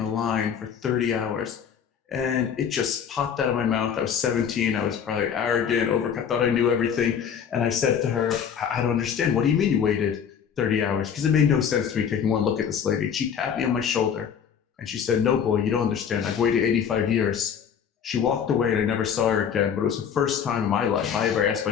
line for 30 hours. And it just popped out of my mouth. I was 17. I was probably arrogant, I thought I knew everything. And I said to her, I don't understand. What do you mean you waited 30 hours? Because it made no sense to me taking one look at this lady. She tapped me on my shoulder. And she said, no, boy, you don't understand. I've waited 85 years. She walked away and I never saw her again. But it was the first time in my life I ever asked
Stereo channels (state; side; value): quieter; right; 7.8 dB